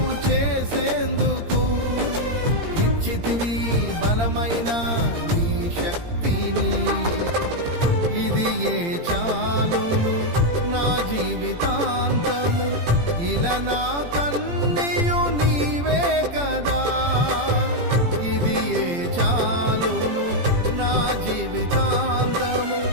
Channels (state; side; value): late; left; 17 ms